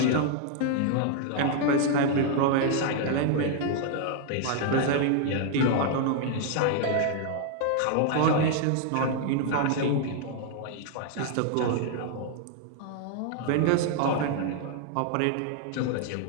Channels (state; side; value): different; both; correlation 0.00